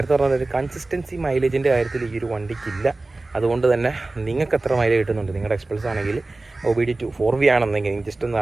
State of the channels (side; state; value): left; quieter; 3.1 dB